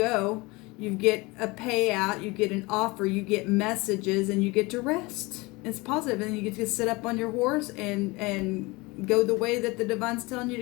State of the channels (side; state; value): right; quieter; 23.8 dB